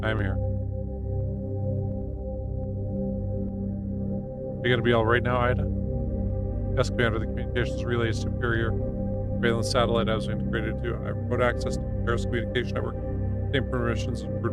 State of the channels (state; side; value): identical; both; correlation 1.00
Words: I am here. Are you gonna be alright now, Ida? Yes, Commander. The communications relay is superior. Surveillance satellite I was integrated to. I have remote access to the Paris communication network. Same permissions as